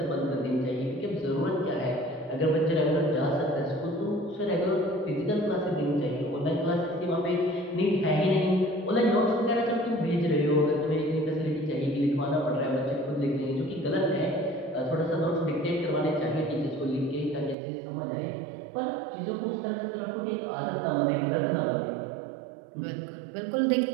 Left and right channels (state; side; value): drops out; left; at 17.6 s